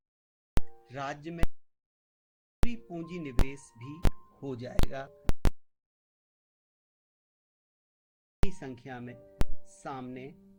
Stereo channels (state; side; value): identical; both; correlation 1.00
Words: राज्य में पूंजी निवेश भी हो जाएगा, संख्या में सामने